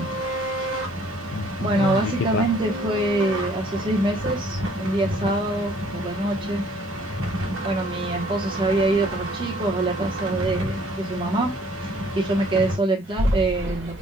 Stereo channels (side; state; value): both; normal; correlation 0.59